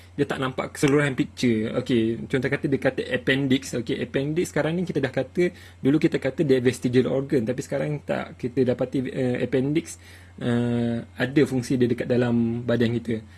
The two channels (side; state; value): both; identical; correlation 1.00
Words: dia tak nampak keseluruhan picture. Okay, contoh kata dia kata appendix. Okay, appendix sekarang ni kita dah kata, dulu kita kata dia vestigial organ, tapi sekarang tak, kita dapati appendix ada fungsi dia dekat dalam badan kita.